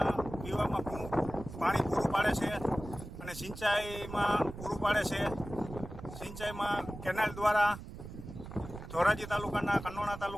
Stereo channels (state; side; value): noise; right; rumble, 12 dB below the sound